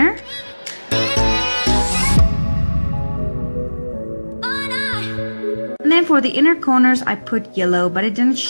And then for the inner corners I put yellow, but it didn't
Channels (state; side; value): inverted; both; correlation -1.00